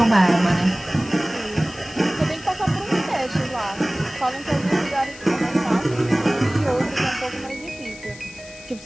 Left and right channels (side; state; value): left; noise; hiss, 19 dB below the sound